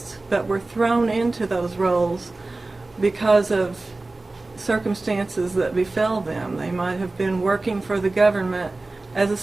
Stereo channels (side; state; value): left; quieter; 3.2 dB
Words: but were thrown into those roles because of circumstances that befell them. They might have been working for the government as a